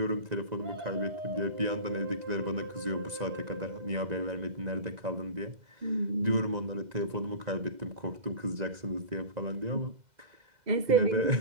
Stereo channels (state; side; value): late; left; 2.1 ms